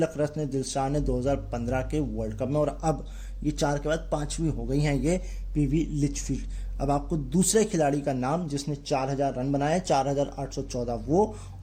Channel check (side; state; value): both; identical; correlation 1.00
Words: रत्न दिलशान ने 2015 के वर्ल्ड कप में। और अब ये 4 के बाद 5वीं हो गई हैं ये PV लिचफील्ड। अब आपको दूसरे खिलाड़ी का नाम जिसने 4000 रन बनाए, 4814 वो,